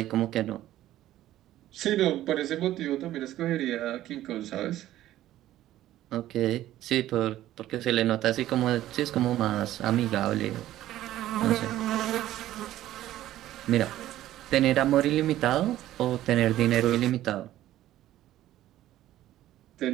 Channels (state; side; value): quieter; left; 13.9 dB